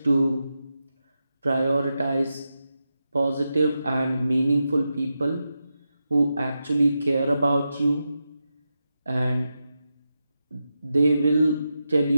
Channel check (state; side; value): inverted; both; correlation -0.89